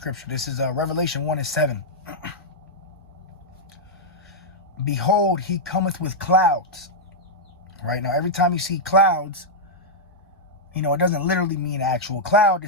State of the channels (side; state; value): both; normal; correlation -0.06